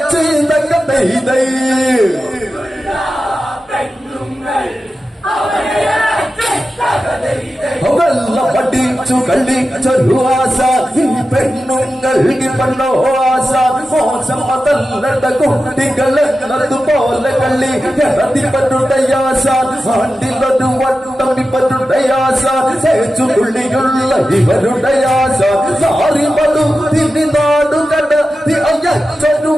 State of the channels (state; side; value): normal; both; correlation 0.92